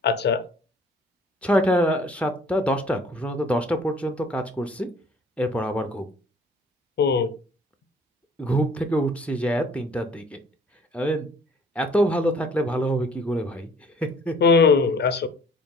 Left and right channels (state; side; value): normal; both; correlation 0.54